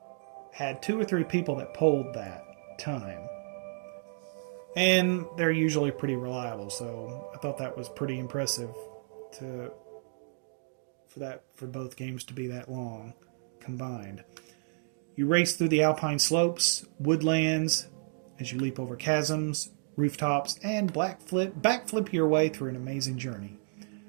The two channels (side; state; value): left; silent; digital silence